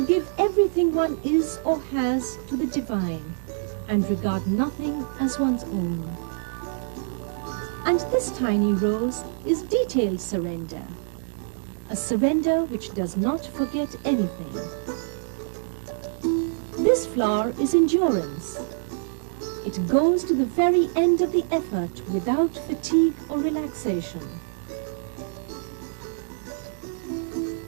give everything one is or has to the divine, and regard nothing as one's own. And this tiny rose is detailed surrender, a surrender which does not forget anything. This flower is endurance. It goes to the very end of the effort without fatigue or relaxation.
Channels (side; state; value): left; silent; digital silence